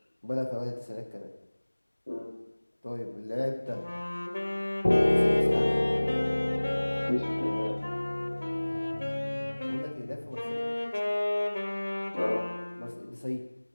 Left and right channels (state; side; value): inverted; both; correlation -1.00